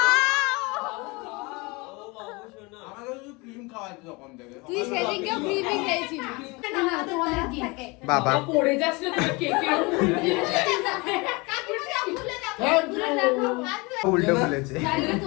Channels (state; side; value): quieter; right; 26.2 dB